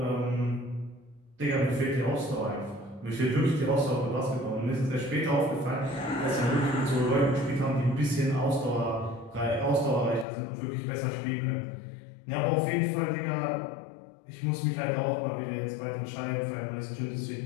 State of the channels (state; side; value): drops out; right; at 10.2 s